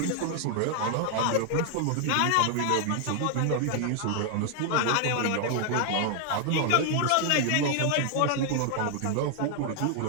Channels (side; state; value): both; different; correlation 0.00